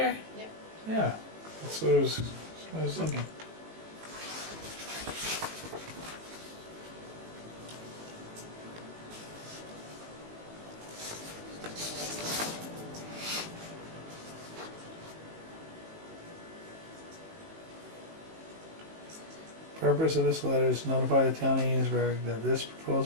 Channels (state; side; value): late; left; 19 ms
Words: Yep. Yeah. That's what that's what I was thinking. Purpose of this letter is to notify the town of Enosburgh that this